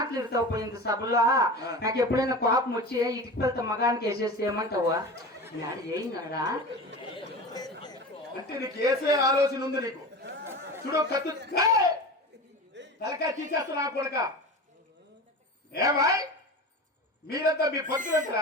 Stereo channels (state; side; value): normal; both; correlation 0.31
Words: ఇంత సభలో నాకు ఎప్పుడైనా కోపం వచ్చి ఇటుకు వెళ్తా మగానికి వేసేసి ఏమంటావా ఏయినాడా అంటే నీకు వేసే ఆలోచన ఉంది నీకు చూడు కత్తు తలకాయ తీసేస్తా నా కొడక ఏమాయ్ మీరంతా మీ